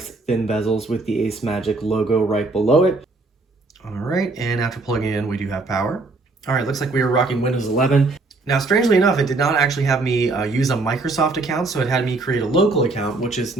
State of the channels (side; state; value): left; quieter; 3.4 dB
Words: thin bezels with the ACEMAGIC logo right below it. All right, and after plugging it in, we do have power. All right, looks like we are rocking Windows 11. Now, strangely enough, it did not actually have me use a Microsoft account, so it had me create a local account, which is